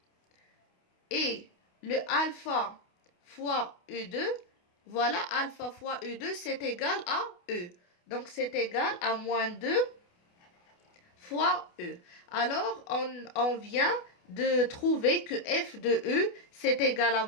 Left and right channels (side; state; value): right; late; 28 ms